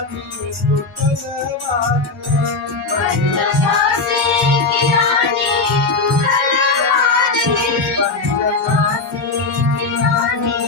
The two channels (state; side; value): quieter; right; 3.8 dB